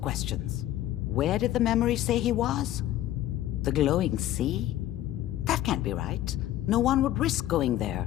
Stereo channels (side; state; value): right; quieter; 13.4 dB